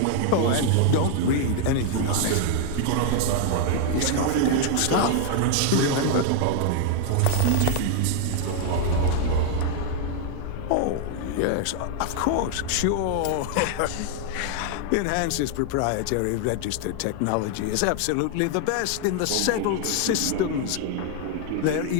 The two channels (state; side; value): different; both; correlation 0.00